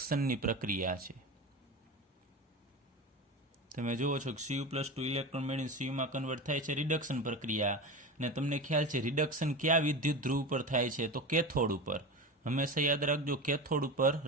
પ્રક્રિયા છે. તમે જુઓ છો કે Cu+2 ઇલેક્ટ્રોન મેળવીને Cuમાં કન્વર્ટ થાય છે, રિડક્શન પ્રક્રિયા. અને તમને ખ્યાલ છે રિડક્શન ક્યાં વિદ્યુત ધ્રુવ પર થાય છે, તો કેથોડ ઉપર. હંમેશા યાદ રાખજો કેથોડ ઉપર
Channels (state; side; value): normal; both; correlation 0.26